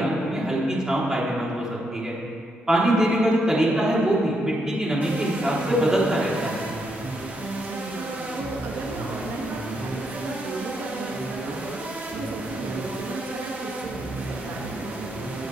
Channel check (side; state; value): both; normal; correlation 0.79